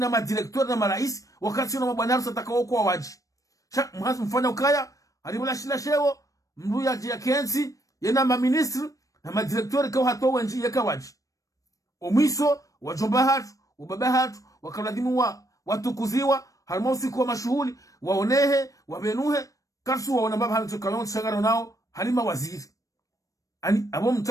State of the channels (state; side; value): late; right; 0.16 ms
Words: madirektori na marais wakati na mabwana harusi atakao kwa waji mhazi mfanya ukaya halimula shila shewo mruya jia kensi yena maministri na madirektori kao hato wenji yeka waji omwiso wajomba hatu ubaba hatu wakaladhimu watukuziwa haruma usiku wa mashuhuli waonehe wabenuhe karsu waona mbaba hatu kayonti shangara nao halima waziri ani abo